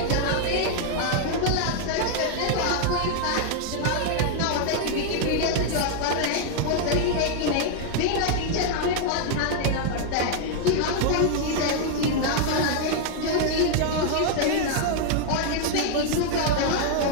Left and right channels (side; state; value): both; different; correlation 0.00